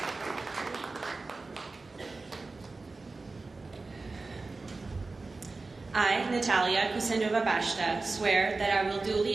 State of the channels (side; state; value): left; quieter; 3.6 dB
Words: I, Natalia Kusendova-Bashta, swear that I will duly